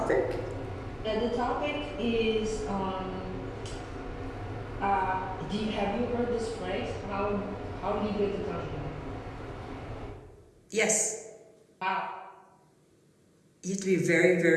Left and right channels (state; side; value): identical; both; correlation 1.00